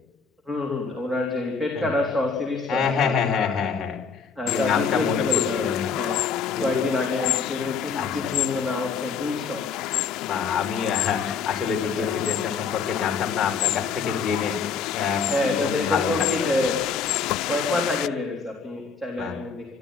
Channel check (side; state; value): right; quieter; 5.6 dB